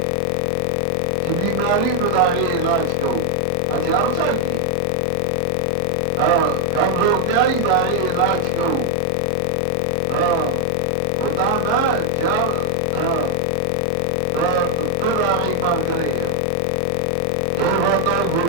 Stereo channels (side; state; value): both; different; correlation 0.00